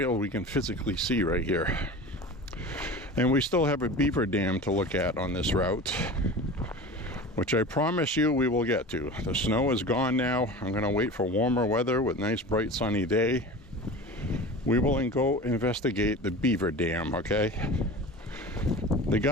we can physically see right here. And we still have a beaver dam to look at on this route, which I promise you we will get to. The snow is gone now. I'm going to wait for warmer weather with nice bright sunny day. We will go investigate the beaver dam, okay? The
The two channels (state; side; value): normal; both; correlation 0.34